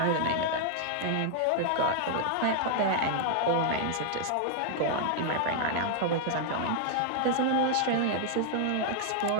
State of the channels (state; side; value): different; both; correlation 0.00